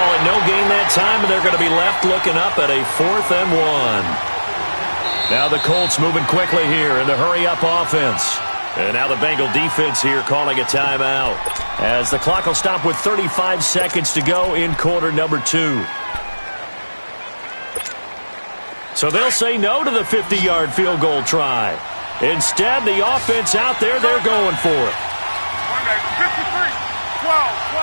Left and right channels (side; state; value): both; inverted; correlation -1.00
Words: it no gain that time, and they're going to be left looking up at a 4th and 1. Now the Colts moving quickly here in the hurry-up offense. And now the Bengal defense here calling a timeout, as the clock will stop with 35 seconds to go in quarter number 2. So they'll say no to the 50-yard field goal try. Instead, the offense out there, they're going for it. 53, 12.